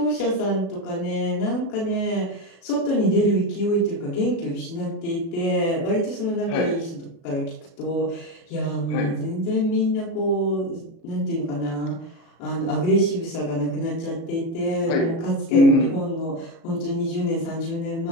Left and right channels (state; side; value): late; right; 36 ms